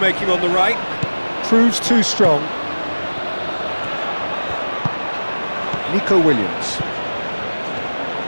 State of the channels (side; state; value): both; inverted; correlation -1.00